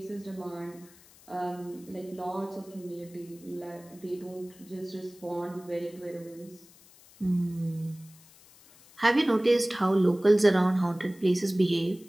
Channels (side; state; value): left; noise; hiss, 25 dB below the sound